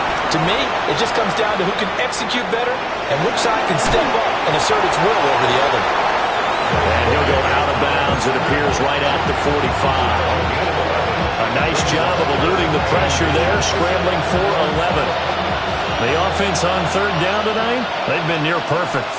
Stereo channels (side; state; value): both; identical; correlation 1.00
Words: To me, it just comes down to who can execute better and which side can step up and assert its will over the other. And he'll go out of bounds, it appears, right at the 45. A nice job of eluding the pressure there, scrambling for 11. The offense on third down tonight, they've been near perfect,